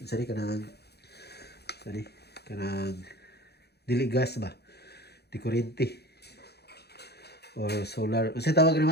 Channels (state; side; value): late; right; 0.48 ms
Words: sari kanang dili gas ba? Di kuryente. Or solar. Unsa tawag